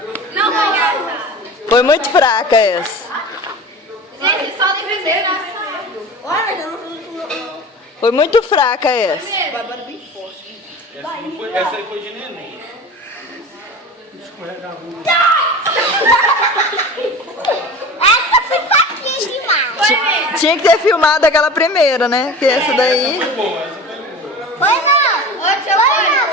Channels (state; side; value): normal; both; correlation 0.35